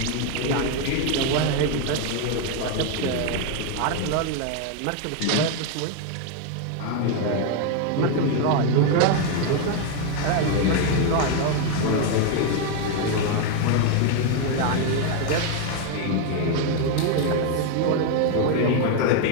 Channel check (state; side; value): different; both; correlation 0.01